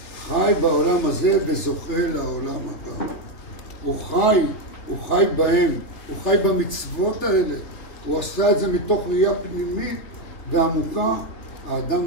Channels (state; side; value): late; right; 3.3 ms